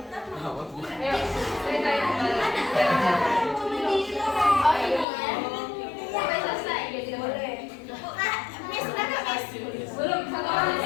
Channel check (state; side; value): drops out; right; at 5.1 s